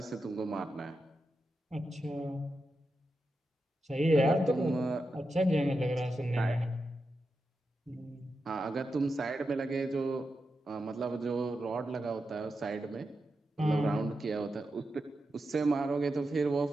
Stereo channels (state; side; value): normal; both; correlation 0.89